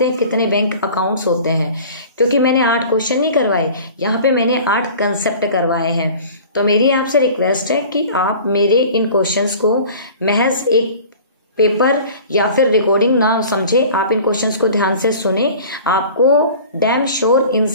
हैं, कितने बैंक अकाउंट्स होते हैं। क्योंकि मैंने 8 क्वेश्चन नहीं करवाए, यहाँ पे मैंने 8 कंसेप्ट करवाए हैं। तो मेरी आपसे रिक्वेस्ट है कि आप मेरे इन क्वेश्चंस को महज एक पेपर या फिर रिकॉर्डिंग ना समझे, आप इन क्वेश्चंस को ध्यान से सुने, आपको डैम श्योर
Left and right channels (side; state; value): both; inverted; correlation -0.43